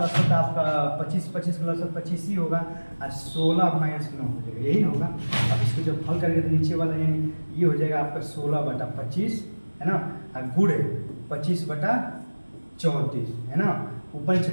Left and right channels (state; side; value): inverted; both; correlation -1.00